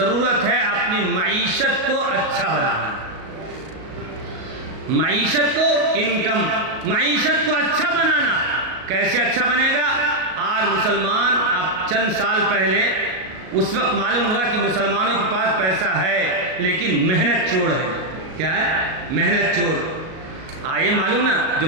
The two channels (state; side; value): late; left; 38 ms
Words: ہے اپنی معیشت کو اچھا بنانا، معیشت کو، انکم، معیشت کو اچھا بنانا۔ کیسے اچھا بنے گا؟ آج مسلمان، اب چند سال پہلے اس وقت معلوم ہوا کہ مسلمانوں کے پاس پیسہ ہے لیکن محنت چور ہے۔ کیا ہے؟ محنت چور۔ آئے معلوم نا، جو